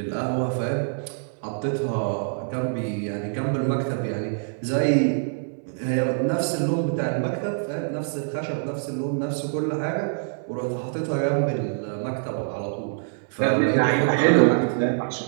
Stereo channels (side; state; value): left; silent; 59 dB below the other